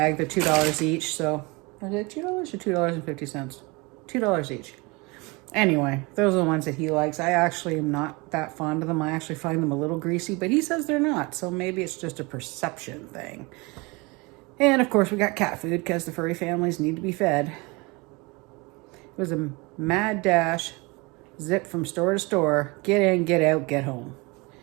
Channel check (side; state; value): left; quieter; 26.3 dB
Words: They're $2 each. So, is it $2 or $2.50? $2 each. Anyway, those are the ones that he likes. I actually am not that fond of them. I actually find them a little greasy, but he says they're not. So maybe it's just a perception thing. And of course we got cat food because the furry families need to be fed. It was a mad dash, zip from store to store, get in, get out, get home.